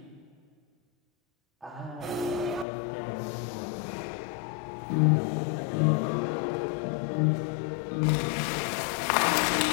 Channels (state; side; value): drops out; right; at 2.7 s